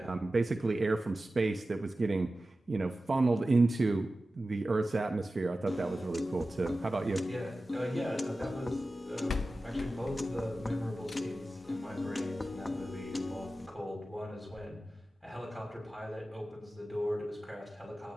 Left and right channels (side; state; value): both; normal; correlation 0.95